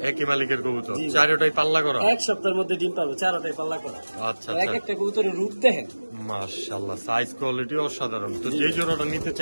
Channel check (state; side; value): inverted; both; correlation -1.00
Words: একই মালিকের কবুতর, জি। চারটাই পাল্লা করা। এক সপ্তাহের মধ্যে ডিম পাবো, 4টাই পাল্লা করা। আচ্ছা এক আচ্ছা, একটা কবুতরের রূপ দেখেন। মাশাআল্লাহ, সাইজ কোয়ালিটি অসাধারণ। তো যে জোড়াটা নিতে